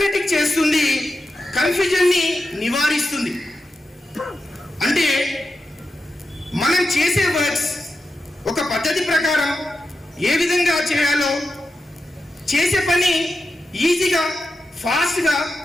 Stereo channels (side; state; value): both; normal; correlation 0.89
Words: చేస్తుంది, కన్ఫ్యూజన్ని నివారిస్తుంది. అంటే మనం చేసే వర్క్స్ ఒక పద్ధతి ప్రకారం ఏ విధంగా చేయాలో, చేసే పని ఈజీగా ఫాస్ట్గా